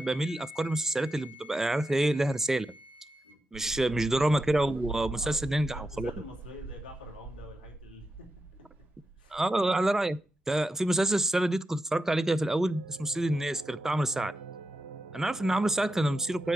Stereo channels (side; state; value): both; normal; correlation 0.88